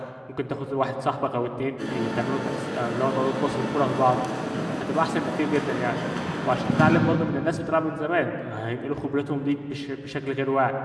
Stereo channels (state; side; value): identical; both; correlation 1.00